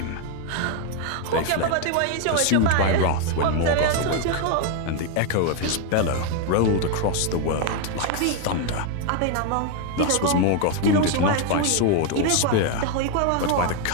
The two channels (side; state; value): both; different; correlation 0.01